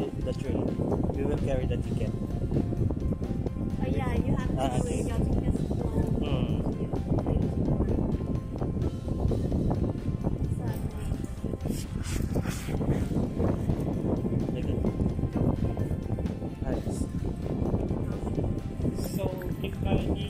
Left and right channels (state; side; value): identical; both; correlation 1.00